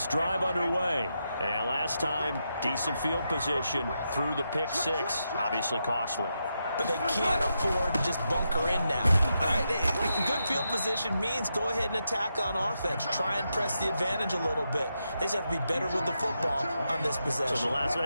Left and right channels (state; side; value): inverted; both; correlation -0.85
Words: drive underway. And last time, decent field position through the pick six. Obviously costly. But they can't afford to just bunker in now. All right? Good field position means go ahead and attack on offense. Try and press the advantage a little bit. They just have to be better with the football on this possession. So the last one,